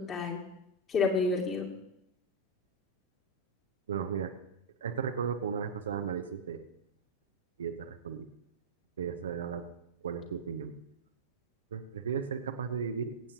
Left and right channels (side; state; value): both; normal; correlation -0.03